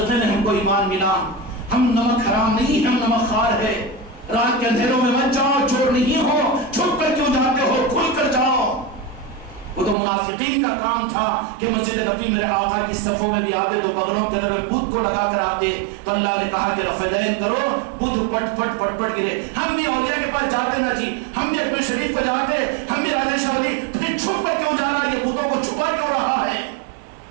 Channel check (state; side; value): drops out; left; at 10.0 s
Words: میں ہم کو ایمان ملا, ہم نمک حرام نہیں, ہم نمک خوار ہے. رات کے اندھیروں میں مت جاؤ, چور نہیں ہو, چھپ کر کیوں جاتے ہو, کھل کر جاؤ. وہ تو منافقین کا کام تھا کہ مسجد نبی میرے آقا کی صفوں میں بھی آتے تو بغلوں کے اندر بت کو لگا کر آتے. تو اللہ نے کہا کہ رفع دین کرو, بت پٹ پٹ پٹ پٹ گرے. ہم بھی اولیاء کے پاس جاتے نا جی, ہم بھی اکبر شریف کو جاتے, ہم بھی راجہ شاہ ولی, پھر چھپ کر کیوں جا رہا ہے, یہ بتوں کو چھپا کیوں رہا ہے؟